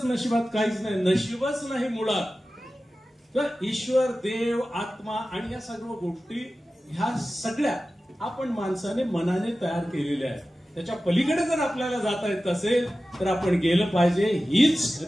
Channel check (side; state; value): both; normal; correlation 0.95